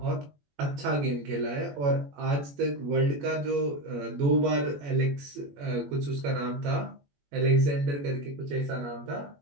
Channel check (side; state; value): left; late; 21 ms